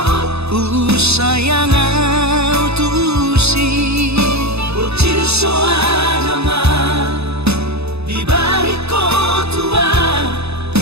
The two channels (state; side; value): late; left; 0.79 ms